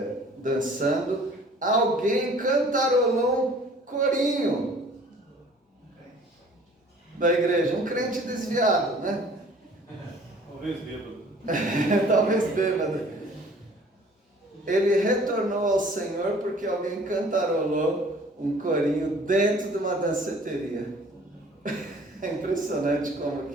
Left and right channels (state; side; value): normal; both; correlation 0.52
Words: dançando, alguém cantarolou um corinho da igreja, um crente desviado, né? Talvez bêbado. Talvez bêbado. Ele retornou ao Senhor porque alguém cantarolou um corinho dentro de uma danceteria. É impressionante